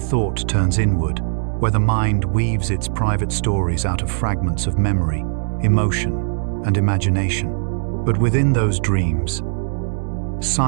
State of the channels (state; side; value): silent; left; digital silence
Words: turns inward, where the mind weaves its private stories out of fragments of memory, emotion, and imagination. But within those dreams,